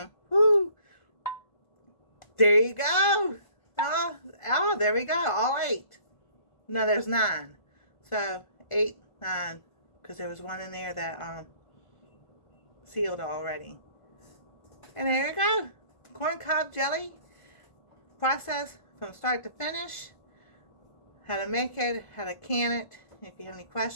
Woo! There you go. Oh, there we go, all 8. No, there's 9. So 8, 9, because there was one in there that sealed already. And there you go. Corn cob jelly. Process from start to finish. How to make it, how to can it. If you have any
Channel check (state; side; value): late; right; 1.5 ms